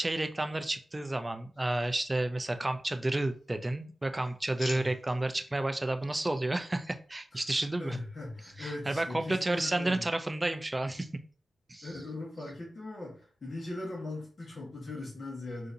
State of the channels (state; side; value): normal; both; correlation 0.97